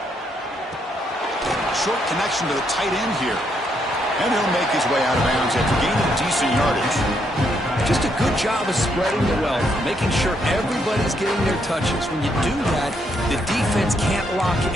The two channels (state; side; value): normal; both; correlation 0.75